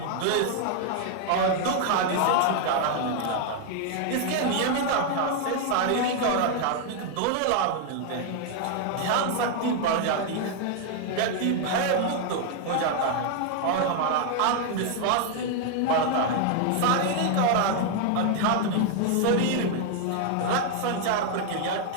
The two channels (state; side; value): different; both; correlation 0.00